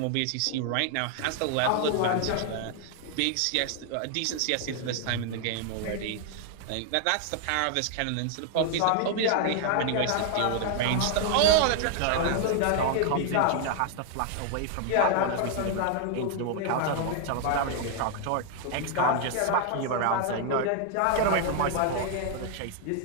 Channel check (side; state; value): both; different; correlation 0.00